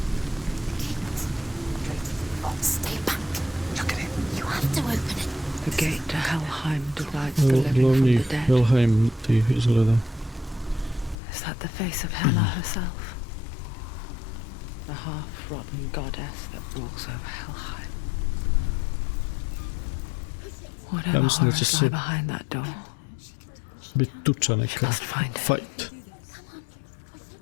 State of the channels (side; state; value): right; drops out; at 11.2 s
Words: Stay back. Look at it. You have to open it. The gate to Helheim divides the living from Glavni the dead. Helheim ti izgleda. Is that the face of Hela herself? The half-rotten goddess that rules over Helheim. Whatever mislim da će horrors se lie behind that door. Bit tuča neka. Must find it. Fight.